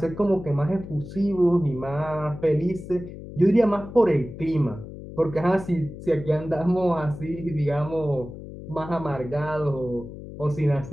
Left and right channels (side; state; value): left; noise; hum, 12 dB below the sound